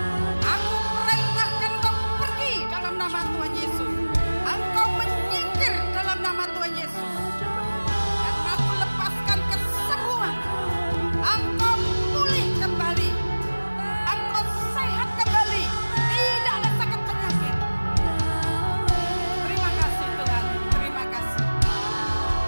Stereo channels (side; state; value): both; inverted; correlation -1.00